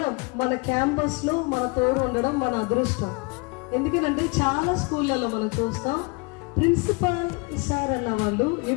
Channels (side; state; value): right; quieter; 29.7 dB